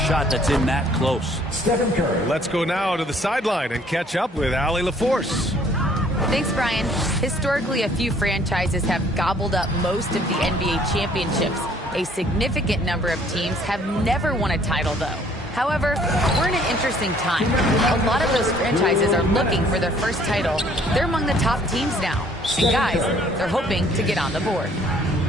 that's in that close. Stephen Curry. Let's go now to the sideline and catch up with Allie LaForce. Thanks, Brian. Historically, a few franchises have gobbled up most of the NBA championships. A significant number of teams have never won a title, though. However, we're in an interesting time. A lot of those franchises are looking for their first title. They're among the top teams now. And guys, they're hoping to get on the board.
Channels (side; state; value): both; normal; correlation 0.59